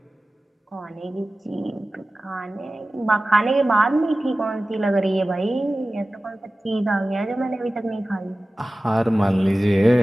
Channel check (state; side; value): normal; both; correlation 0.96